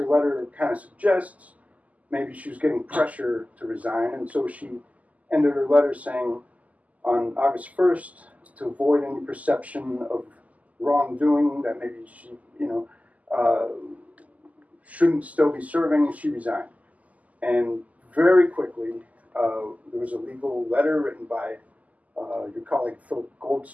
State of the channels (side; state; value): left; late; 0.073 ms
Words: letter kind of suggests, maybe she was getting pressure to resign, and so she ended her letter saying, on August 1st, to avoid any perception of wrongdoing, that maybe she, shouldn't still be serving, she resigned. And very quickly, there was a legal letter written by your colleague Philip